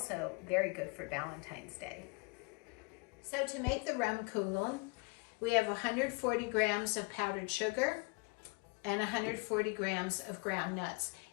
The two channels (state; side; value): quieter; right; 29.4 dB